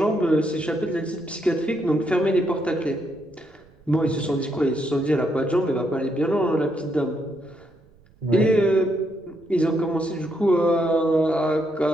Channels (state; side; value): noise; right; rumble, 29 dB below the sound